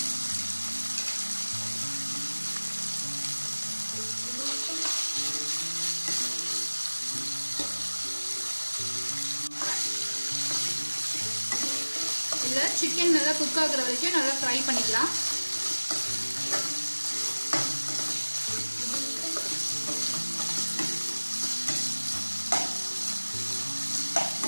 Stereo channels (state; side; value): inverted; both; correlation -1.00